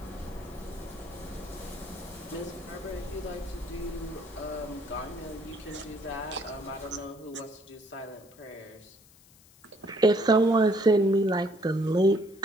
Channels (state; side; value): noise; left; hiss, 26 dB below the sound